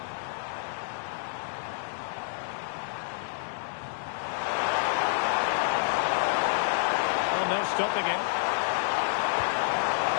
Oh, no stopping him.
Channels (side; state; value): right; silent; 59 dB below the other